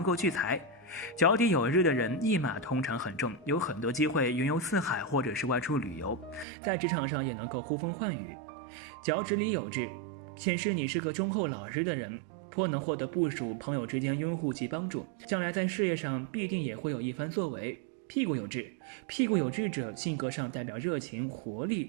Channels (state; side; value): drops out; left; at 6.5 s